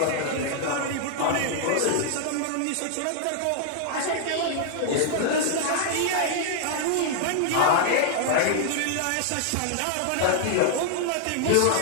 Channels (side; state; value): both; different; correlation -0.01